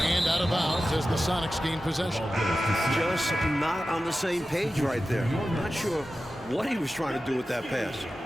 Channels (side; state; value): both; normal; correlation 0.93